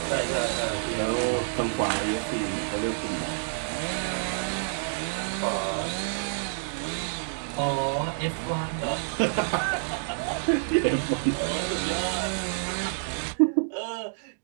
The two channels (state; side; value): silent; left; digital silence